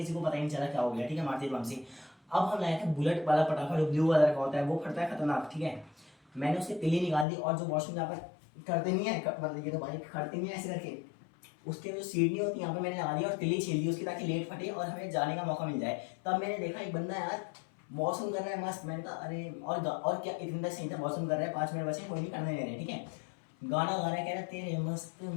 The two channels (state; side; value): drops out; right; at 7.2 s